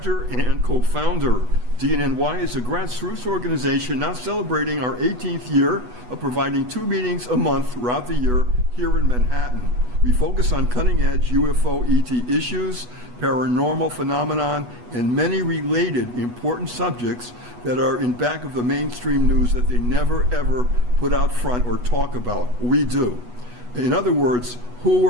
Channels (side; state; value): left; late; 8.2 ms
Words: and co-founder. dnny is a grassroots organization now celebrating our 18th year of providing 2 meetings a month throughout the year here in Manhattan. We focus on cutting-edge UFO ET issues, paranormal phenomenon, and many related important subjects that are in back of the mainstream news that they never ever put out front or talk about. We do. In other words, who